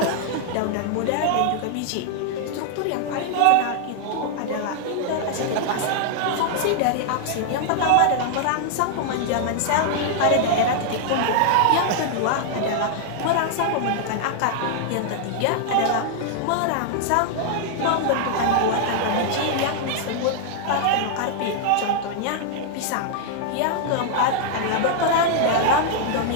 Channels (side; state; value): both; different; correlation -0.01